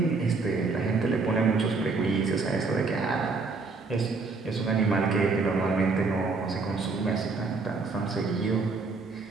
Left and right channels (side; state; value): left; quieter; 4.1 dB